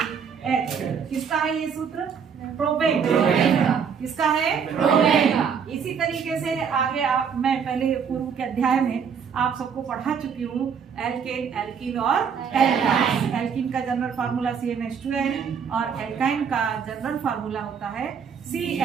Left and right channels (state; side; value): quieter; left; 6.9 dB